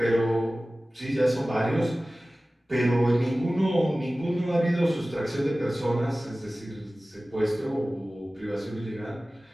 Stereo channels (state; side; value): normal; both; correlation 0.97